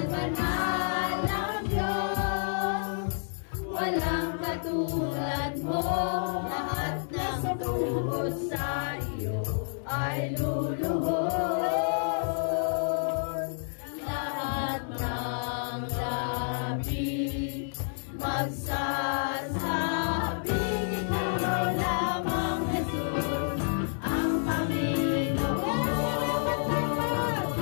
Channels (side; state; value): right; silent; digital silence